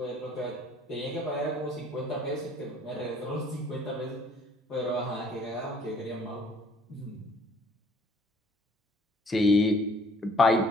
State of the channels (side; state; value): both; normal; correlation 0.59